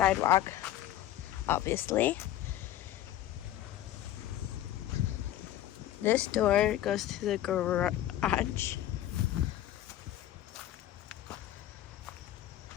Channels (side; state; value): right; quieter; 13.0 dB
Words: obviously. This door goes to the garage.